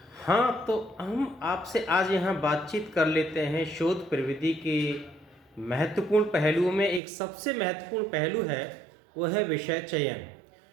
हाँ, तो हम आपसे आज यहाँ बातचीत कर लेते हैं शोध प्रविधि के महत्वपूर्ण पहलुओं में। एक सबसे महत्वपूर्ण पहलू है, वो है विषय चयन।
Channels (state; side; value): drops out; left; at 7.0 s